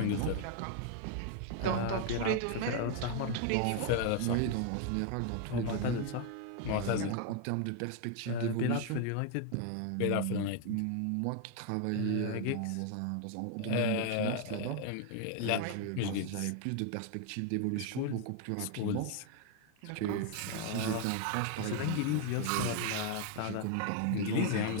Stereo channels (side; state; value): both; different; correlation 0.00